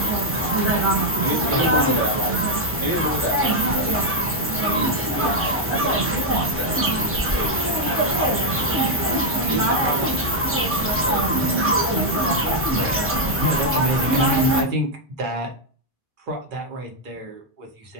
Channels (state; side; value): normal; both; correlation -0.01